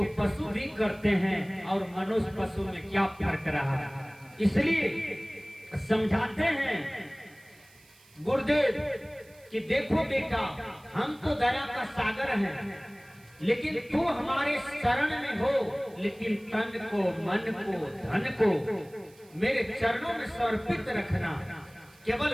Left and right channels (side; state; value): right; noise; hiss, 27 dB below the sound